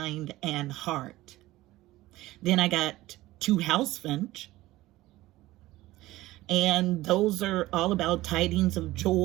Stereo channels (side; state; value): left; quieter; 17.4 dB